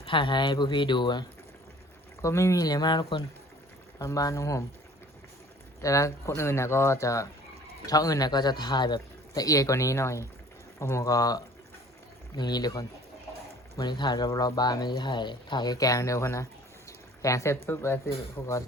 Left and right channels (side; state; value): both; normal; correlation 0.50